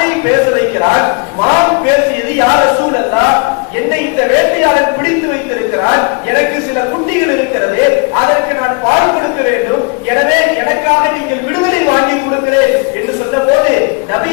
பேச வைக்கிறார். மான் பேசியது, யா ரசூலல்லாஹ், என்னை இந்த வேட்டையாளன் பிடித்து வைத்திருக்கிறார், எனக்கு சில குட்டிகள் இருக்கிறது, அதற்கு நான் பால் கொடுக்க வேண்டும், எனவே எனக்காக நீங்கள் விடுதலை வாங்கி கொடுக்கிறேன் என்று சொன்ன போது நபி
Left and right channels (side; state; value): right; quieter; 32.2 dB